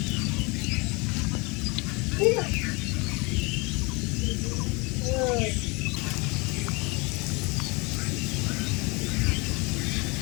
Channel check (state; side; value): quieter; right; 27.8 dB